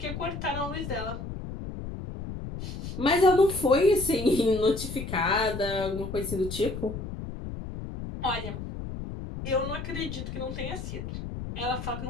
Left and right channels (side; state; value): left; noise; rumble, 7 dB below the sound